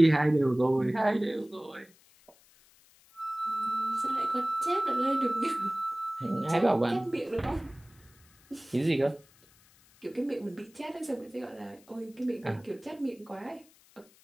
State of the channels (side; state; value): left; noise; hiss, 29 dB below the sound